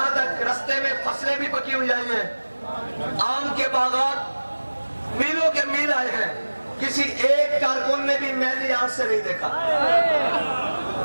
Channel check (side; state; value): both; inverted; correlation -1.00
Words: تک رستے میں فصلیں بھی پکی ہوئی آئی ہیں, آم کے باغات میلوں کے میل آئے ہیں, کسی ایک کارکن نے بھی میلی آنکھ سے نہیں دیکھا,